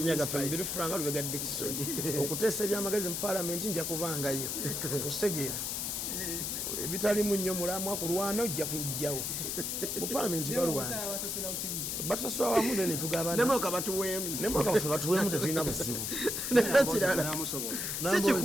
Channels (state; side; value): noise; left; hiss, 2 dB below the sound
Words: gaffe mubiri franga lubega Dickson okuteesa ebyamagezi mu palamenti nja kubangayo okitegeera ebitalimu nnyo mulamwa kulwana ojja kujjawo mu palamenti balwana batusasula wamu ne tugabana nemoka batuweemu nemoka baffe batuweemu tetulina buzibu nekirala si